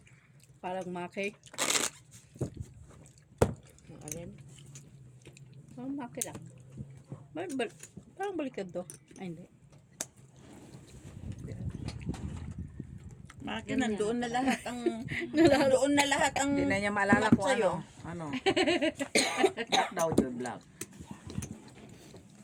Parang maki. Ang alin? Parang maki lang. Parang baliktad to. Ay, hindi. Maki, nandoon na lahat ang... nandoon na lahat ang... Hindi na niya maalala kung sa'yo. ano. Black daw yun, black.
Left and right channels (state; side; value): identical; both; correlation 1.00